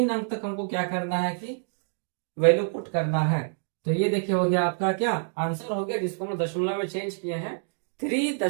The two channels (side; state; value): left; silent; digital silence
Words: अंक तक हमको क्या करना है कि वैल्यू पुट करना है। तो ये देखिए हो गया आपका क्या आंसर हो गया, जिसको हम दशमलव में चेंज किए हैं